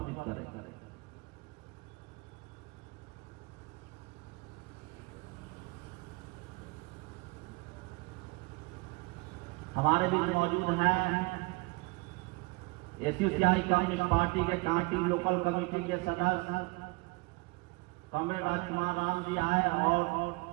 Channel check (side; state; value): left; quieter; 26.3 dB